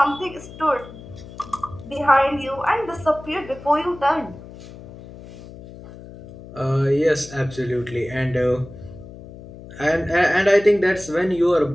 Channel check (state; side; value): noise; left; hum, 16 dB below the sound